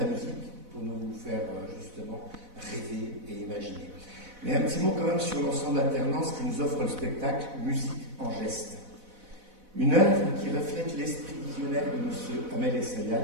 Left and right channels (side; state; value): left; late; 4.0 ms